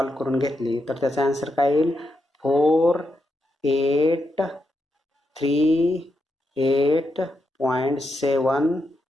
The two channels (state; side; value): normal; both; correlation 0.84